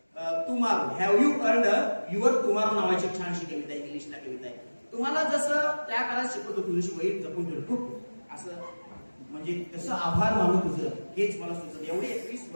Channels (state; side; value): inverted; both; correlation -1.00